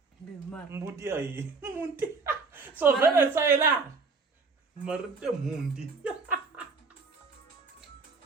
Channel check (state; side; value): quieter; left; 4.3 dB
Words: Bimar. Mbuti ayi. Munti. So vele sayela. Marite munti.